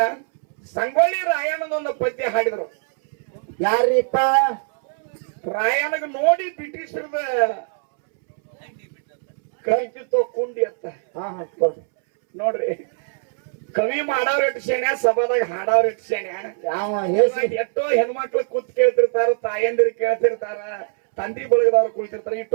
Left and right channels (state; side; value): silent; left; 64 dB below the other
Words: ಸಂಗೊಳ್ಳಿ ರಾಯಣ್ಣನೊಂದು ಪದ್ಯ ಹಾಡಿದ್ರು. ಯಾರಿಪ್ಪ? ರಾಯಣ್ಣಗ ನೋಡಿ ಬ್ರಿಟಿಷರದ ಕಲಿತಿತ್ತೋ ಕುಂಡಿ ಅಂತ. ನೋಡ್ರಿ, ಕವಿ ಮಾಡವ್ರ ಎಟ್ಟು ಶೇಣ್ಯ, ಸಭಾದಾಗ ಹಾಡವ್ರ ಎಟ್ಟು ಶೇಣ್ಯ. ಎಷ್ಟೋ ಹೆಣ್ಮಕ್ಳು ಕೂತ್ ಕೇಳ್ತಿರ್ತಾರ, ತಾಯಂದಿರು ಕೇಳ್ತಿರ್ತಾರ, ತಂದಿ ಬಳಗದವ್ರು ಕುಳಿತಿರ್ತಾರೆ.